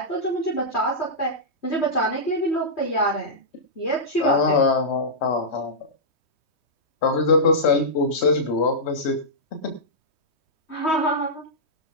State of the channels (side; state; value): right; late; 3.2 ms